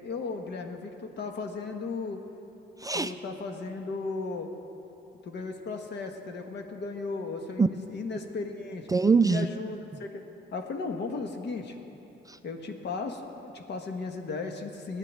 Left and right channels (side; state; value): both; normal; correlation 0.65